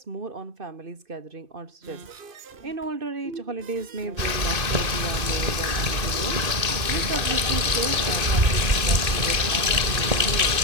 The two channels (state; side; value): late; left; 2.5 ms